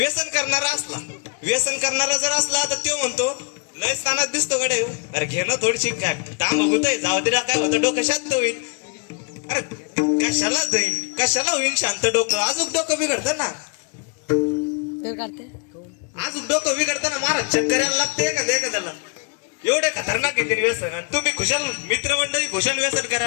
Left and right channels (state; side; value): quieter; right; 35.3 dB